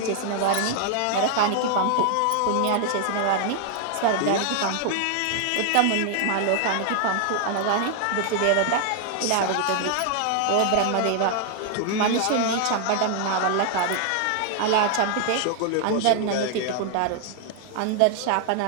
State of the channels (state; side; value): different; both; correlation 0.00